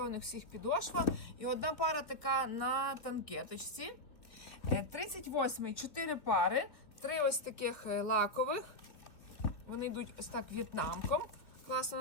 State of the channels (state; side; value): late; right; 2.6 ms